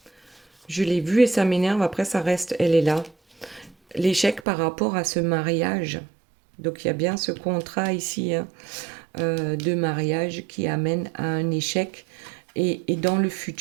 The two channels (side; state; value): left; drops out; at 4.4 s